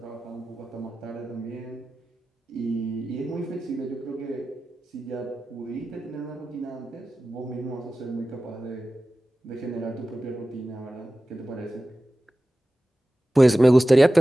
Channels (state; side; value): normal; both; correlation 0.95